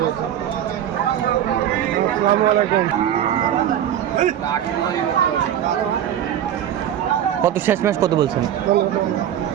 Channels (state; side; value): quieter; left; 10.5 dB